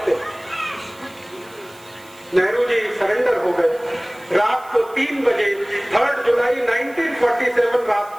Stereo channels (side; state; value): right; noise; hiss, 25 dB below the sound